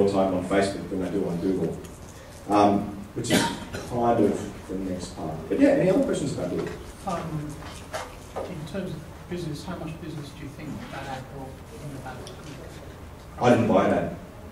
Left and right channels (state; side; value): identical; both; correlation 1.00